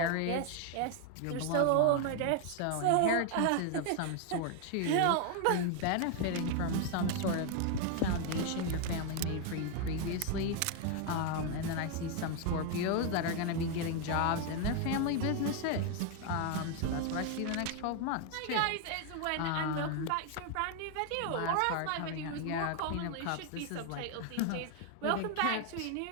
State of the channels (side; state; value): both; different; correlation 0.01